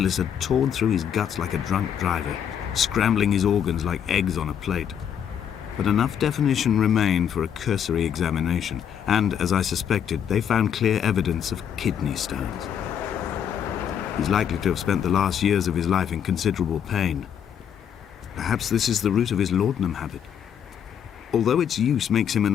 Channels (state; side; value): quieter; right; 8.6 dB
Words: had torn through his guts like a drunk driver, scrambling his organs like eggs on a plate. But enough definition remained for a cursory examination, and, as I suspected, they found clear evidence of kidney stones. He's likely to have spent the last years of his life in considerable pain. Perhaps this is the root of his laudanum habit. Although its use makes him